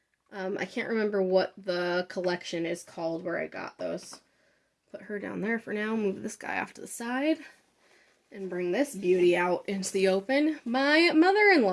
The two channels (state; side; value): identical; both; correlation 1.00